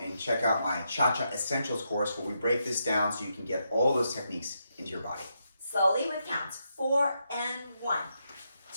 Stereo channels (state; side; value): inverted; both; correlation -0.82